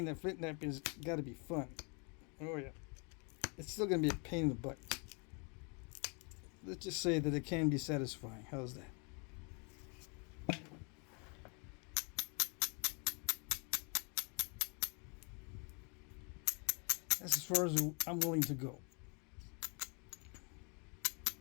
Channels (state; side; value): quieter; right; 35.4 dB